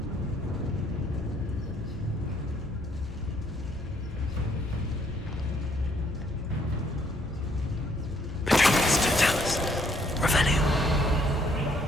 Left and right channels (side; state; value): both; normal; correlation 0.67